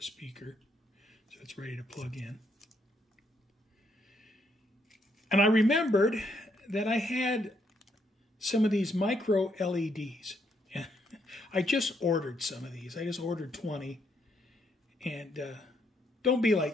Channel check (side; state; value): both; normal; correlation 0.74